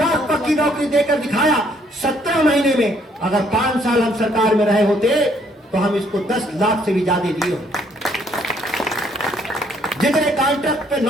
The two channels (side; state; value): both; normal; correlation 0.66